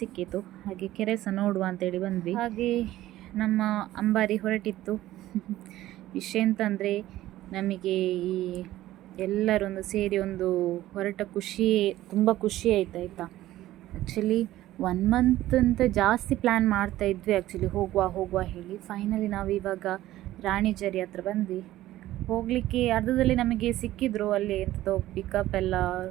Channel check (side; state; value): left; quieter; 15.0 dB